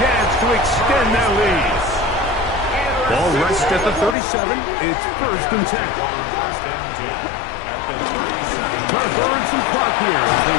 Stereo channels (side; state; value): right; drops out; at 4.2 s